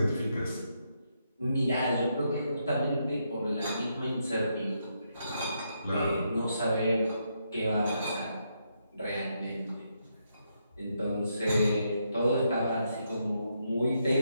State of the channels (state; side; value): inverted; both; correlation -0.79